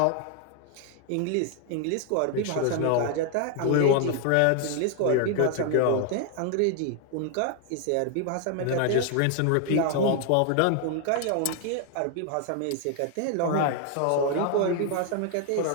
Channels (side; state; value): both; different; correlation 0.00